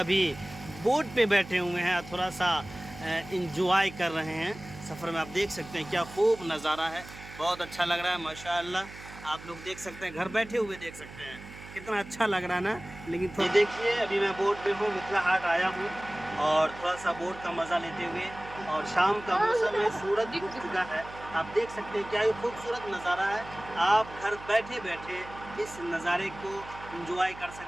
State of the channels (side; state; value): right; noise; hum, 16 dB below the sound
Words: बोट पे बैठे हुए हैं, थोड़ा सा इंजॉय कर रहे हैं सफ़र में। आप देख सकते हैं क्या खूब नज़ारा है, बहुत अच्छा लग रहा है माशाअल्लाह। आप लोग देख सकते हैं, घर बैठे हुए देख सकते हैं कितना अच्छा लग रहा है ना। लेकिन ये देखिए अभी मैं बोट पे हूँ, मिथिला हाट आया हूँ और थोड़ा सा बोट का मज़ा लेते हुए, और शाम का मौसम है, सूरज डूब चुका है। आप देख सकते हैं क्या ही खूबसूरत नज़ारा है। आप घर बैठे बैठे इस नज़ारे को एंजॉय कर